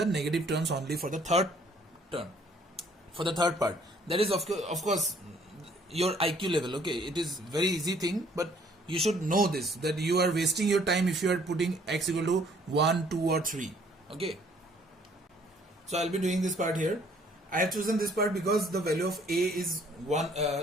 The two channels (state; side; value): normal; both; correlation 0.61